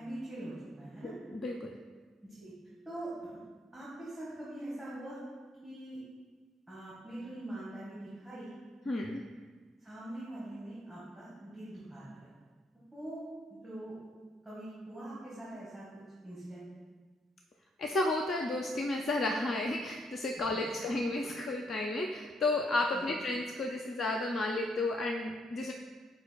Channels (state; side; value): normal; both; correlation 0.72